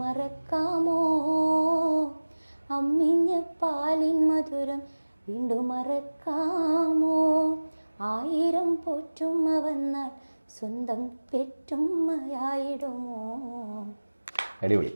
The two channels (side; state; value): both; inverted; correlation -1.00